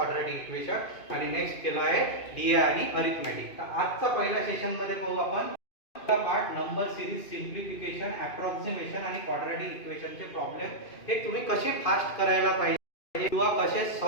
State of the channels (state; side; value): late; right; 2.5 ms